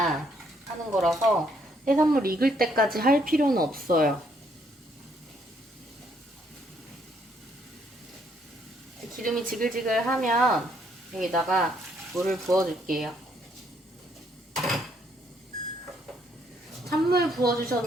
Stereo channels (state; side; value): normal; both; correlation 0.70